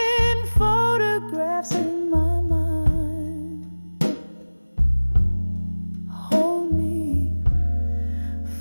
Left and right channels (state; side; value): inverted; both; correlation -1.00